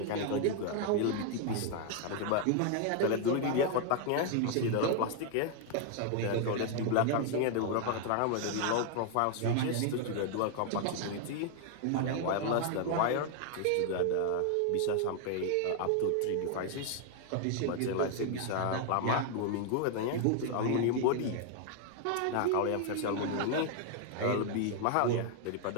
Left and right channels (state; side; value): different; both; correlation 0.00